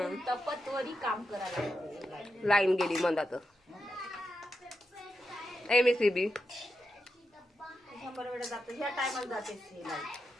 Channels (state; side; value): normal; both; correlation 0.87